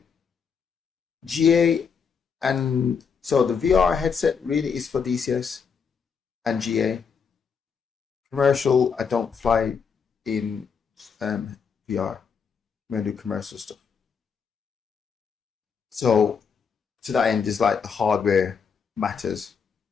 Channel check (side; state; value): right; quieter; 6.2 dB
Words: GA, and so the VR headset really is for DCS and GA. Commercial, I don't fly in VR. I'm gonna do commercial stuff. So to that end is like the hardware matters,